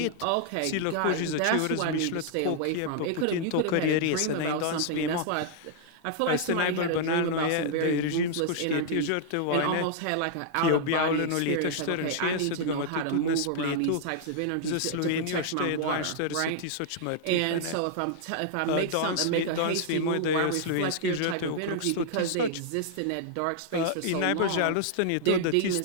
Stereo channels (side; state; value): both; different; correlation -0.01